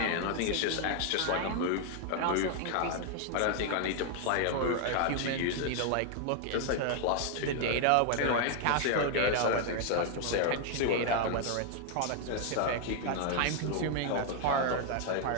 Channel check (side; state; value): both; different; correlation 0.00